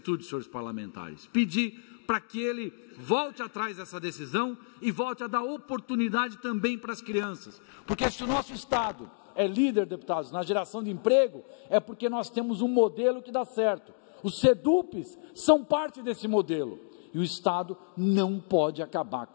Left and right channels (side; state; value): right; silent; digital silence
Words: senhores parlamentares. Pedir para que ele volte atrás dessa decisão e volte a dar oportunidade também para as crianças. Porque se o nosso Estado é líder, deputados, na geração de emprego, é porque nós temos um modelo que dá certo. Os SEDUPs são parte desse modelo. E o Estado não pode acabar